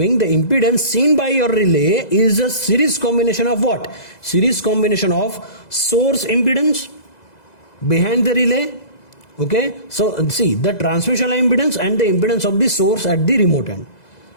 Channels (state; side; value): late; right; 2.0 ms